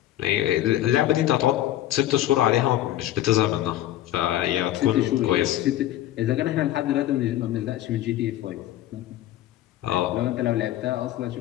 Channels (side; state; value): right; quieter; 13.5 dB